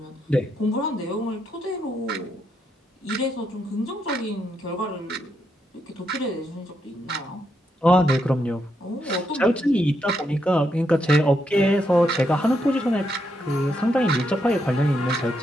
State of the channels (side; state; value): both; normal; correlation 0.80